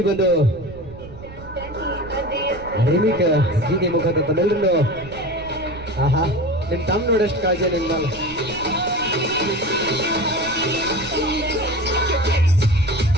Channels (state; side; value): noise; right; rumble, 16 dB below the sound